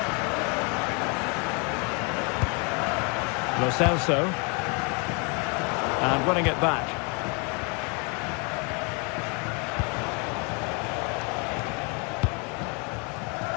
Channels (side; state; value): right; quieter; 33.3 dB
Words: Lo Celso. And running it back.